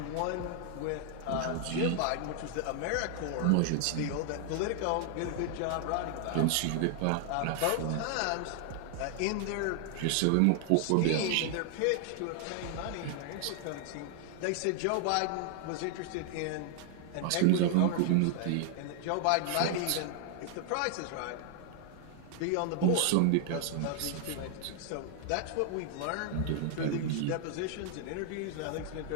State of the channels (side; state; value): both; different; correlation 0.00